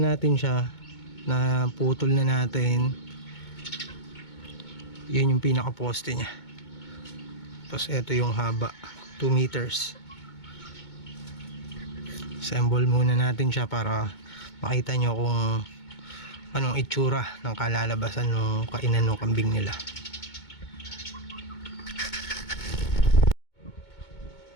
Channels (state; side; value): late; right; 2.2 ms